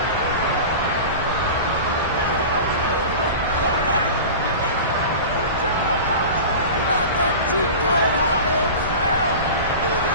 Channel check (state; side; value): inverted; both; correlation -0.32